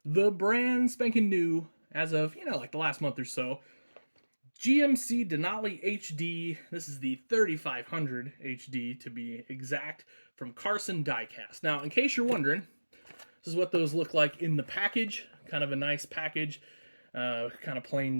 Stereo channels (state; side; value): inverted; both; correlation -1.00